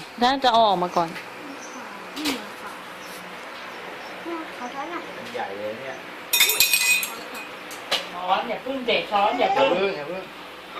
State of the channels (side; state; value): both; identical; correlation 1.00